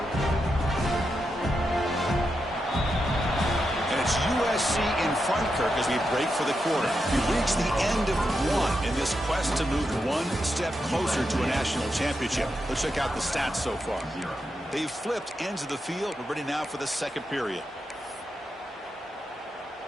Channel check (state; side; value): normal; both; correlation 0.86